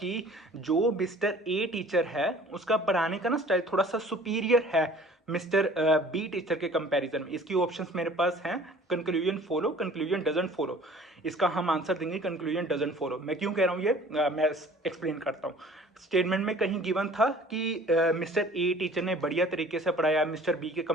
जो मिस्टर ए टीचर है उसका पढ़ाने का ना स्टाइल थोड़ा सा सुपीरियर है मिस्टर बी टीचर के कंपैरिजन में। इसकी ऑप्शंस मेरे पास हैं conclusion follow, conclusion doesn't follow. इसका हम आंसर देंगे कंक्लूजन डजंट फॉलो। मैं क्यों कह रहा हूँ ये मैं एक्सप्लेन करता हूँ। स्टेटमेंट में कहीं गिवन था कि मिस्टर ए टीचर ने बढ़िया तरीके से पढ़ाया मिस्टर बी के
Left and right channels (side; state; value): both; normal; correlation 0.49